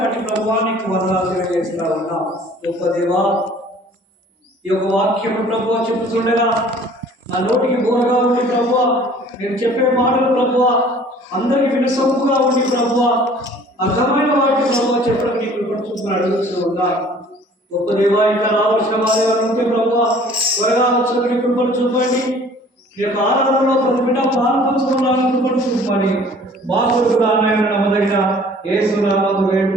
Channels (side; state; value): both; normal; correlation 0.52